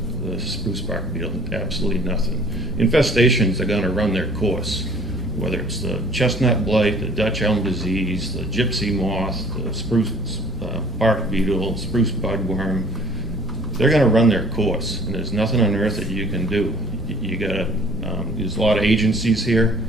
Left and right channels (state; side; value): normal; both; correlation 0.53